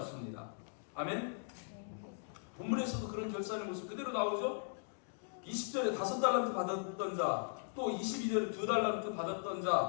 아멘. 본문에서도 그런 결산의 모습 그대로 나오죠. 20절에 5달란트 받았던 자, 또 22절에 2달란트 받았던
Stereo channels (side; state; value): right; silent; digital silence